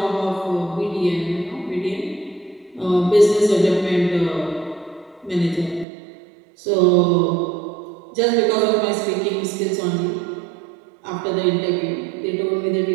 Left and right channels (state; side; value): drops out; left; at 5.9 s